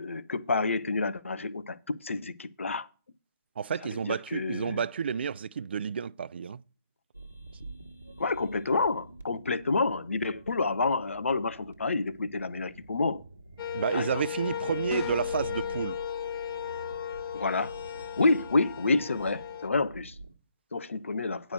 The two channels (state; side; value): inverted; both; correlation -0.70